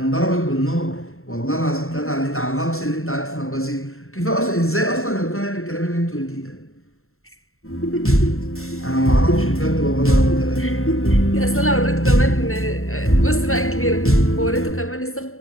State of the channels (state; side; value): late; right; 0.62 ms